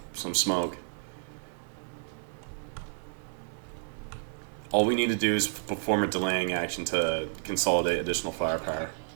some smoke. All we need to do is perform a delaying action to consolidate additional firepower.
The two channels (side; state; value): left; silent; digital silence